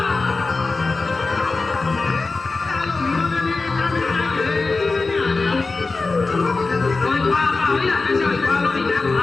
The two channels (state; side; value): quieter; right; 3.8 dB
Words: Hoy guapa, mira, que soy guapo, mira,